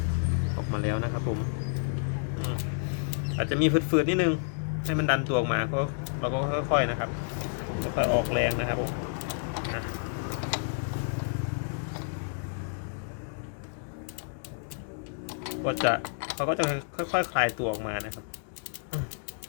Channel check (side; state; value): right; silent; digital silence